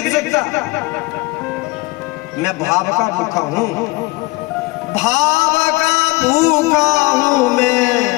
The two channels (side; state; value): right; quieter; 23.3 dB